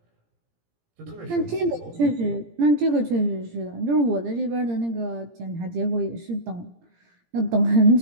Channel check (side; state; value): left; late; 17 ms